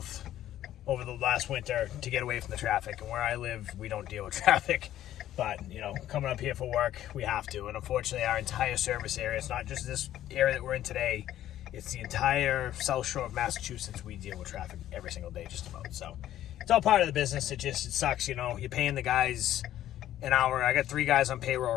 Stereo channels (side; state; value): right; quieter; 12.6 dB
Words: over the last winter to get away from the traffic. And where I live, we don't deal with traffic. But, you know, coming up here for work, we have to. And unfortunately, our entire service area, it's not just this area that we're in today, it's the entire South Shore of Massachusetts. We deal with traffic every single day, just about. So it's all part of the business. It sucks, you know. You're paying the guys an hour. I got 3 guys on payroll